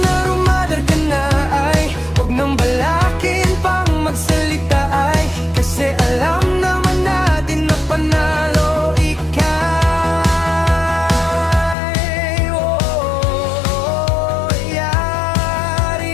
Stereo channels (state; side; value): drops out; right; at 11.8 s